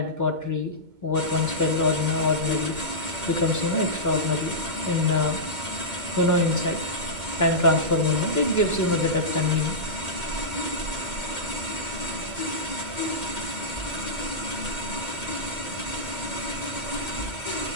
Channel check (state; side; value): late; left; 2.2 ms